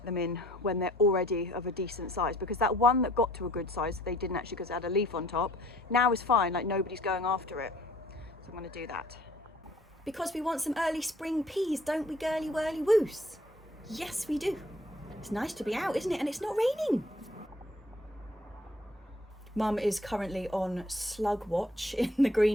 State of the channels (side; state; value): both; normal; correlation 0.57